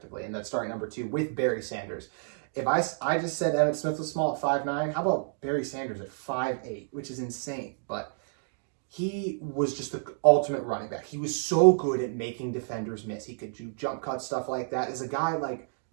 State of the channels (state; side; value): silent; left; digital silence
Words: And that's starting number 2 with Barry Sanders. If I just said Emmitt Smith was small at 5'9", how about Barry Sanders at 5'8", which is insane. But he was just the ultimate running back. He was so good at making defenders miss. He could do jump cuts, stuff like that. As a guy like,